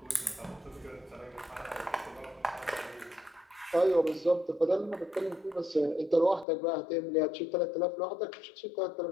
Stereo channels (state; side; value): drops out; right; at 6.5 s